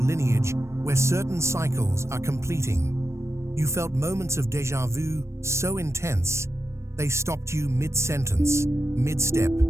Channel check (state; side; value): late; left; 0.13 ms